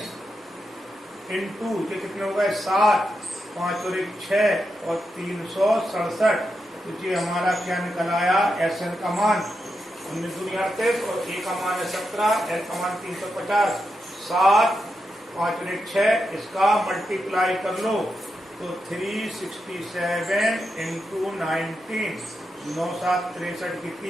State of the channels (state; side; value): normal; both; correlation 0.86